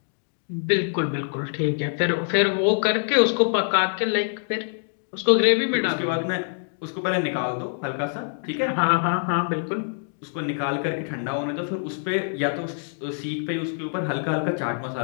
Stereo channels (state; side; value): silent; right; digital silence